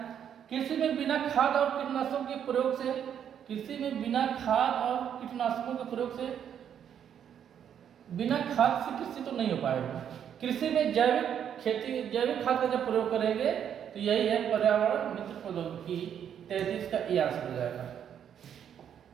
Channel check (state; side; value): quieter; left; 8.9 dB